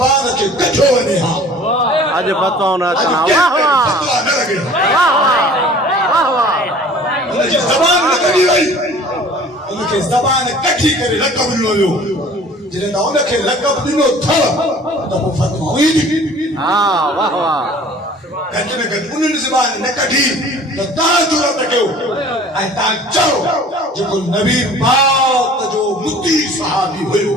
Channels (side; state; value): both; normal; correlation 0.48